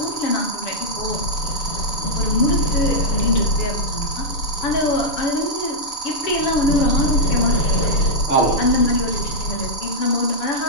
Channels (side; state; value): right; late; 7.1 ms